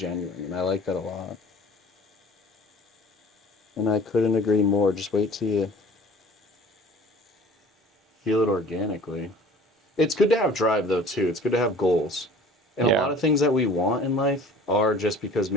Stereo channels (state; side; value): normal; both; correlation 0.47